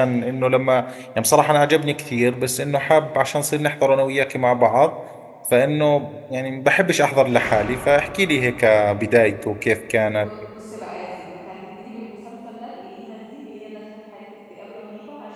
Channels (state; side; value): identical; both; correlation 1.00